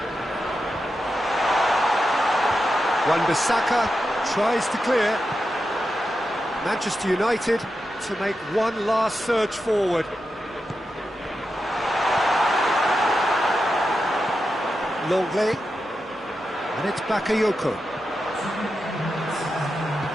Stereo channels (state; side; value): normal; both; correlation 0.89